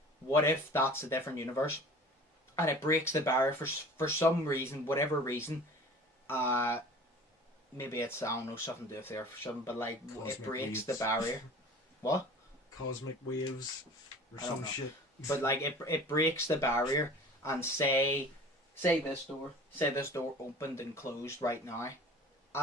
What if that's a different universe, and it breaks the barrier for some reason, whatever reason, maybe it's, I don't know, something to do with there for something, but like, Cosmic it breaks waves. the barrier. What? Cosmic waves or I don't some know. shit. But like, it breaks the barrier, and say this door opened and closed right now.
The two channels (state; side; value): normal; both; correlation 0.43